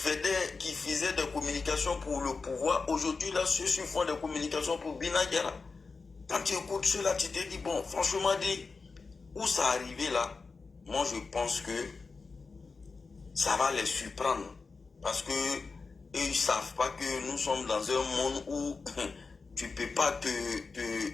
des communications pour le pouvoir. Aujourd'hui, là, ceux-ci font des communications pour Bina Diara. Quand tu écoutes cela, tu te dis, bon, franchement dit, où ça arrivé là, moi je pense que ça va les surprendre. Parce que ils ne savent pas que nous sommes dans un monde où tu ne peux pas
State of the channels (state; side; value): quieter; right; 4.4 dB